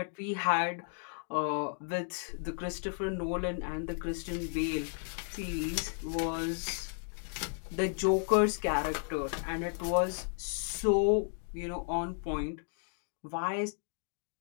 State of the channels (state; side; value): silent; right; 55 dB below the other